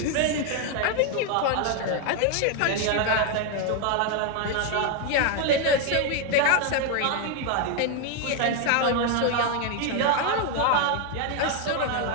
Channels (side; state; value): both; different; correlation 0.01